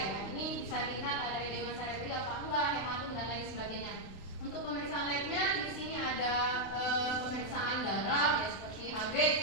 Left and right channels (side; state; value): right; late; 32 ms